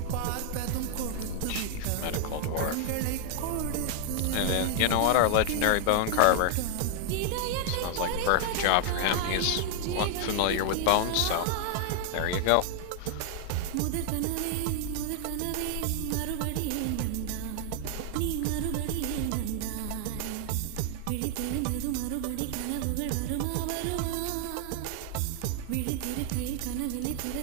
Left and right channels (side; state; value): both; different; correlation 0.00